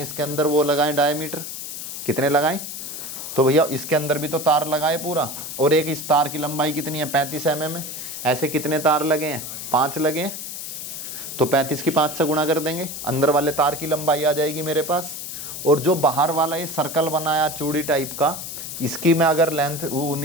इसके अंदर वो लगाए डायमीटर। कितने लगाए, तो भैया इसके अंदर भी तो तार लगाए पूरा, और एक इस तार की लंबाई कितनी है 35 mm है। ऐसे कितने तार लगे हैं 5 लगे हैं, तो 35 की 5 से गुणा कर देंगे, अंदर वाले तार की लंबाई आ जाएगी मेरे पास। और जो बाहर वाला ये सर्कल बनाया चूड़ी टाइप का, इसकी मैं अगर लेंथ वो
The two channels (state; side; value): noise; left; hiss, 8 dB below the sound